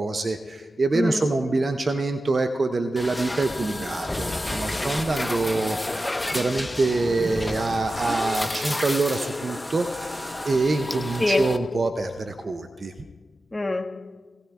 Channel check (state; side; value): normal; both; correlation 0.93